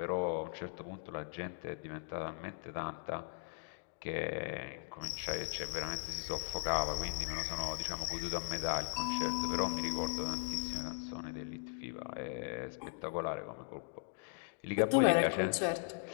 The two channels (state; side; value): silent; right; digital silence